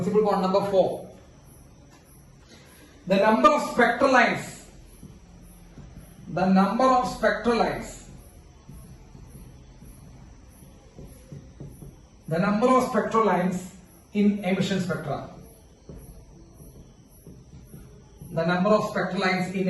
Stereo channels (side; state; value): both; identical; correlation 1.00